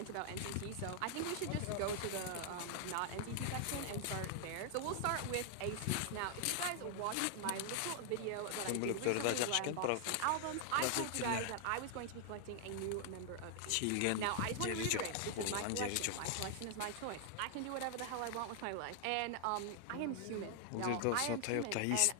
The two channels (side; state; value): both; different; correlation 0.00